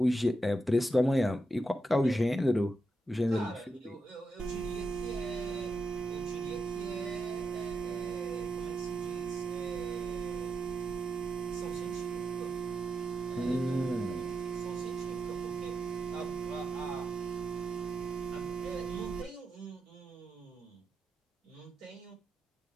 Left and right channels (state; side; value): normal; both; correlation 0.85